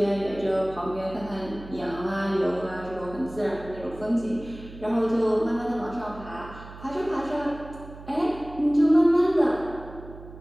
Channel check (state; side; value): noise; right; hum, 16 dB below the sound